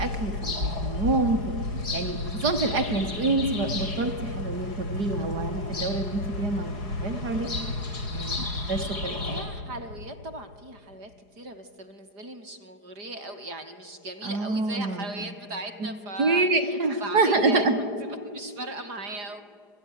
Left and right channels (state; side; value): late; left; 4.9 ms